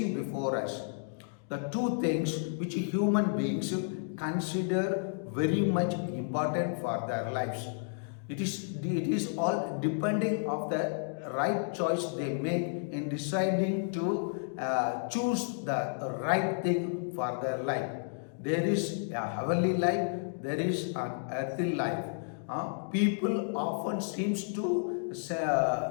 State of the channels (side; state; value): right; silent; digital silence